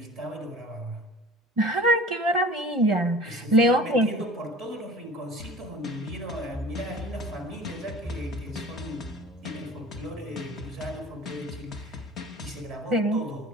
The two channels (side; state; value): both; normal; correlation 0.43